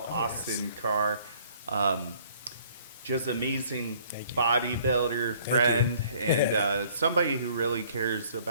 Austin Karr. Um, just amazing bodybuilder friend, and somebody who really cares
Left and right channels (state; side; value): inverted; both; correlation -0.58